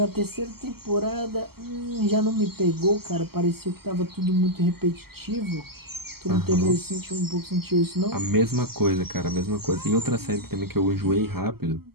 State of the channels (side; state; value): left; late; 0.95 ms